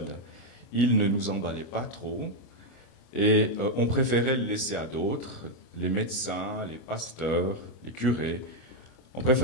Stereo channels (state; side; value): late; right; 25 ms